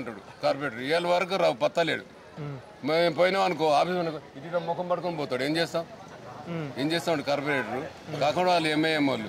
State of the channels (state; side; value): identical; both; correlation 1.00